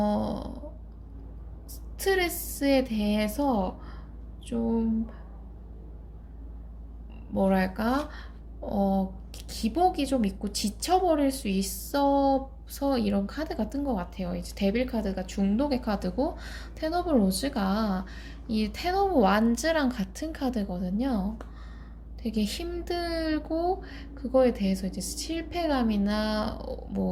스트레스에 대해서 좀 뭐랄까, 기복이 좀 있고 지쳐버릴 수 있어서 이런 카드가 뜬 것 같아요. 이제 데빌 카드가 중독의 카드고, 텐 오브 로즈가 이 텐 오브 완즈랑 같은 카드거든요. 되게 힘들고 그거에 대해서 이제 실패감이나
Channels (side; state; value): both; identical; correlation 1.00